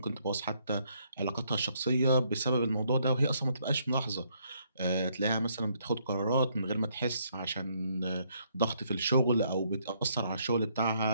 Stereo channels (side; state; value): both; inverted; correlation -0.71